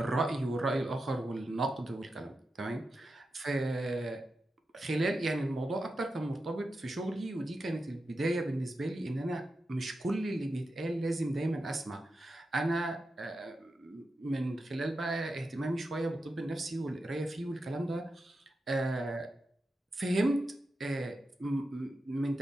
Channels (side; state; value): both; normal; correlation 0.89